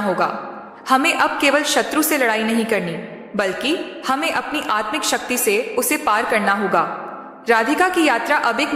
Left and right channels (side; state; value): both; identical; correlation 1.00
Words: हमें अब केवल शत्रु से लड़ाई नहीं करनी, बल्कि हमें अपनी आत्मिक शक्ति से उसे पार करना होगा। राधिका की यात्रा अब एक